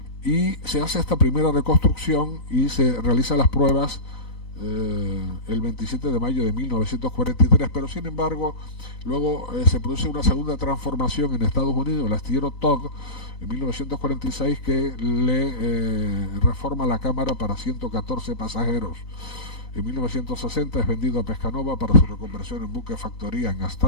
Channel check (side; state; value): right; late; 4.0 ms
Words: Y se hace esta primera reconstrucción y se realizan las pruebas el 27 de mayo de 1943, pero sin embargo luego se produce una segunda transformación en Estados Unidos, el astillero Todd, en 1946, que le reforma la cámara para 114 pasajeros. En 1960 es vendido a Pescanova para su reconversión en buque factoría en